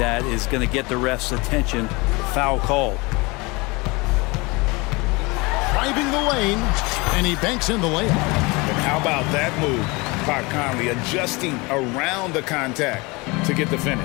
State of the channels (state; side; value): quieter; right; 25.5 dB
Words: is going to get the ref's attention. Foul call. Driving the lane, and he banks in the layup. And how about that move? Pat Conley adjusting around the contact to get the